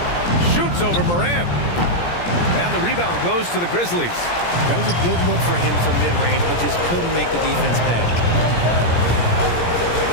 Shoots over Morant. And the rebound goes to the Grizzlies. That was a good look for him from mid-range, but just couldn't make the defense pay.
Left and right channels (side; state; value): right; late; 17 ms